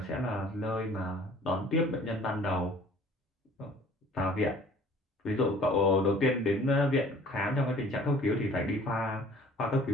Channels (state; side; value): normal; both; correlation 0.51